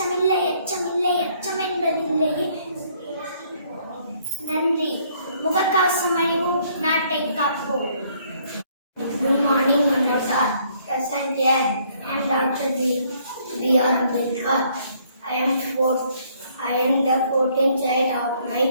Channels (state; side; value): inverted; both; correlation -0.65